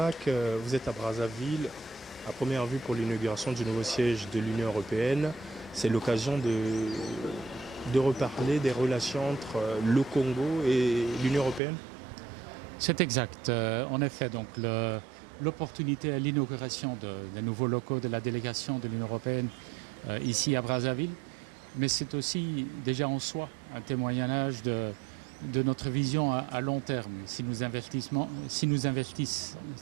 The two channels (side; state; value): left; drops out; at 11.6 s